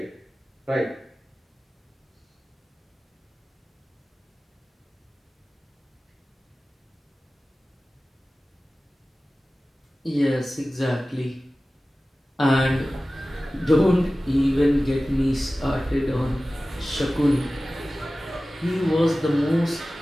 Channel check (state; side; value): normal; both; correlation 0.96